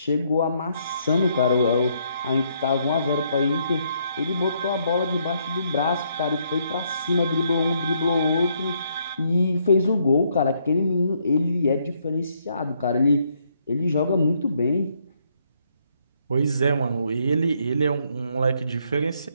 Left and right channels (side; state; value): both; inverted; correlation -0.72